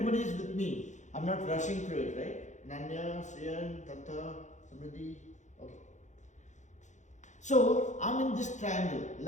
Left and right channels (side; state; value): right; late; 0.35 ms